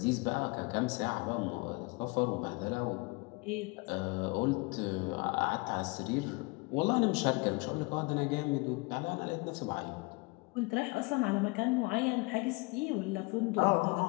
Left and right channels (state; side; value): quieter; right; 27.2 dB